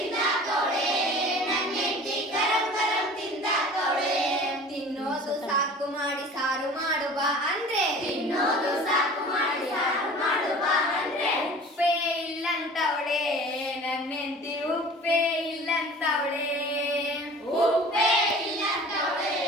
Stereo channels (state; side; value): normal; both; correlation 0.43